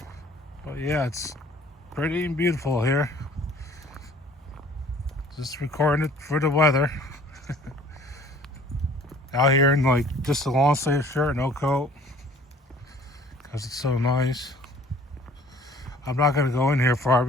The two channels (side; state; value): both; normal; correlation 0.52